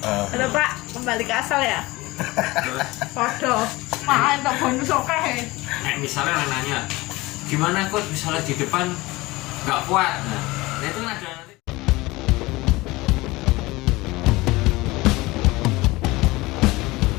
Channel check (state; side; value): quieter; right; 21.0 dB